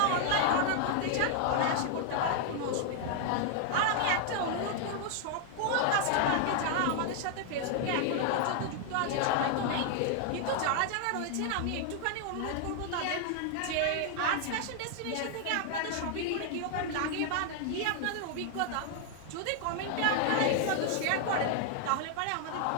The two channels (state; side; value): different; both; correlation 0.00